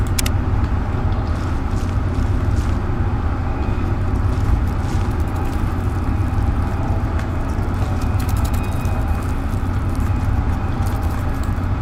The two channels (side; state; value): both; identical; correlation 1.00